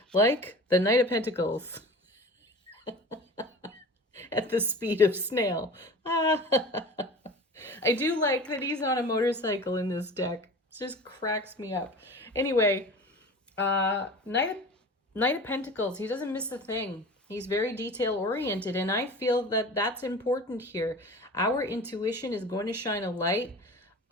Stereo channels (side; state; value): both; normal; correlation 0.37